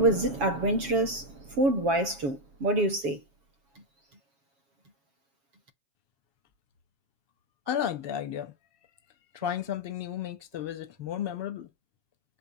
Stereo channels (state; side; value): late; left; 7.2 ms